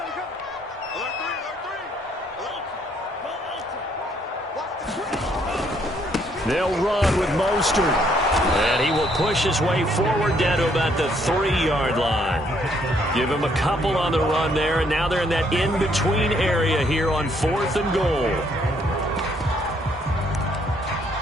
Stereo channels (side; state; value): both; normal; correlation 0.68